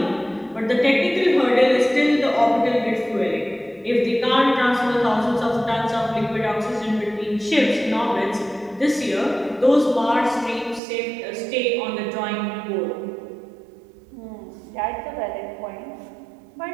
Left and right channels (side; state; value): left; drops out; at 10.8 s